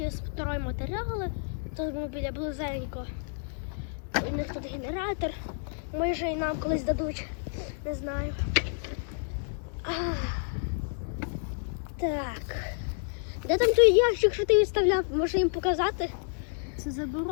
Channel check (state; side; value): silent; right; 58 dB below the other